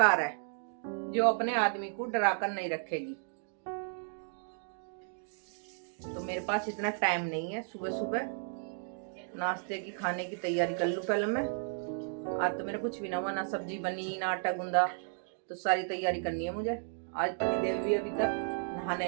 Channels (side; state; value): left; silent; digital silence